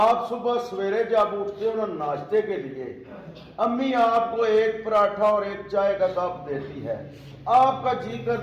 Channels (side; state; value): both; identical; correlation 1.00